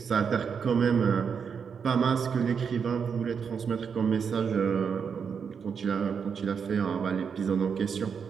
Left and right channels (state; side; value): quieter; left; 6.5 dB